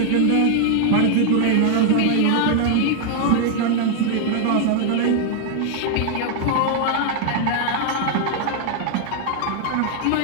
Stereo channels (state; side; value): different; both; correlation 0.00